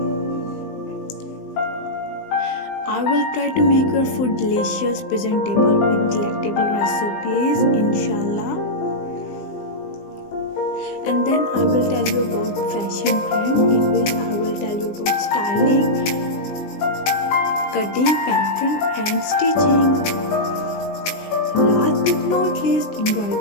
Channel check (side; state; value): right; late; 20 ms